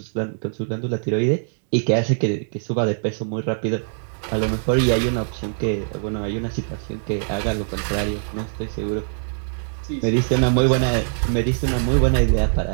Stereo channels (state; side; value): silent; left; digital silence